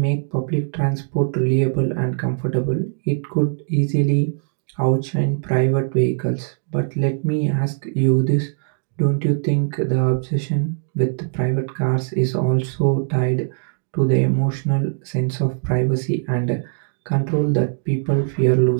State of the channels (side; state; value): left; silent; digital silence